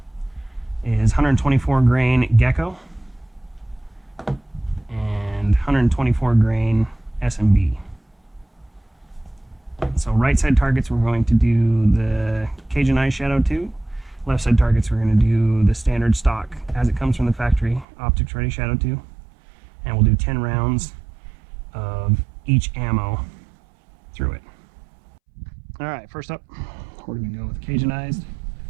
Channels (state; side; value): drops out; left; at 17.9 s